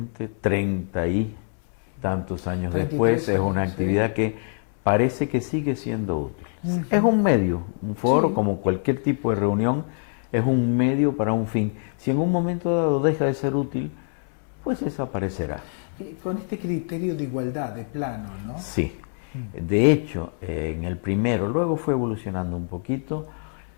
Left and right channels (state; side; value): silent; right; 62 dB below the other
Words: 30 y tantos años después es una actividad que parece que sigue siendo útil. Es un medio, un foro, como cualquier tipo de reunión, es un medio para un fin. Si en un momento dado deja de ser útil, pues desaparecerá. Con este criterio de igualdad, de plano, ¿no? Sí. De hecho, en el primero, luego fue evolucionando un poquito,